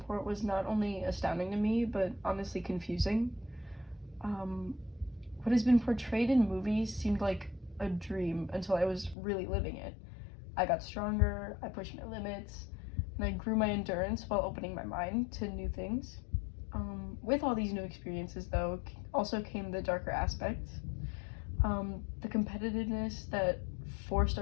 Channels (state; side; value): drops out; right; at 9.2 s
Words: was not only astounding to me, but honestly confusing. Um, what has been portrayed in movies seemed like a dream until I was really living it. I got stronger, I pushed my limits, and I grew my endurance while opening my mind to new things. With all these new experiences, though, also came the darker aspects. The competitiveness that forced